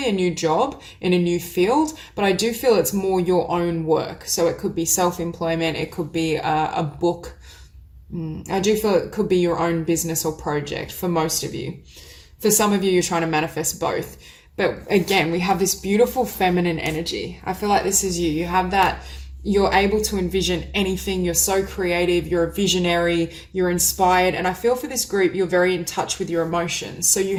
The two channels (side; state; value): both; identical; correlation 1.00